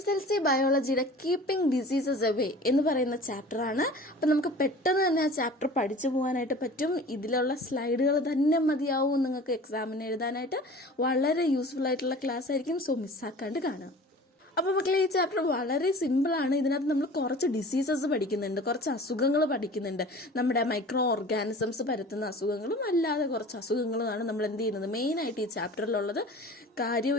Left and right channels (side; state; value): both; normal; correlation 0.42